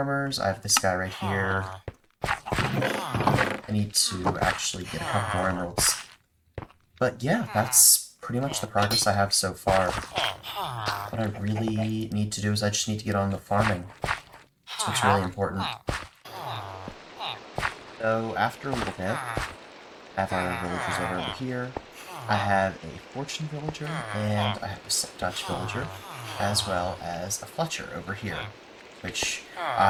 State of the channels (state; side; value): identical; both; correlation 1.00